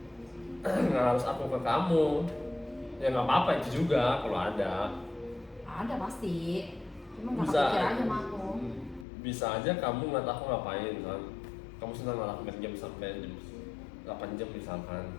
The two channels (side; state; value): right; drops out; at 9.1 s